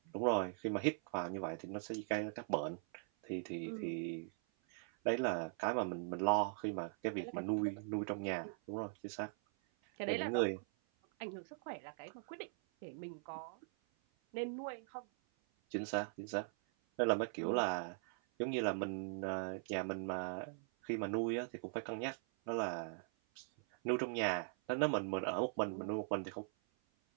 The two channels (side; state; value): left; silent; 50 dB below the other